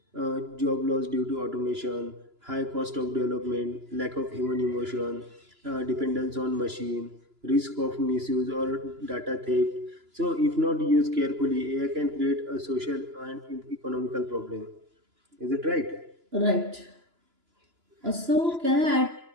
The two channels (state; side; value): late; left; 2.9 ms